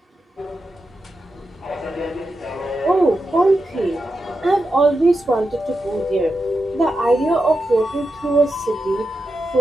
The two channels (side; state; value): both; normal; correlation 0.88